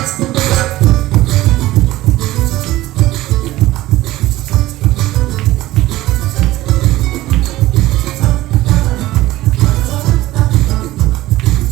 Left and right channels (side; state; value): left; quieter; 16.7 dB